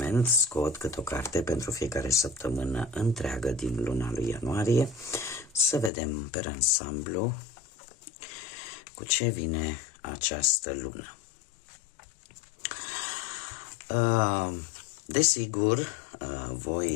scot câte o carte pentru fiecare săptămână întreagă din luna lui ianuarie, să vedem pe ansamblu cu ce vine această lună. Desigur,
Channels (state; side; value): drops out; right; at 5.9 s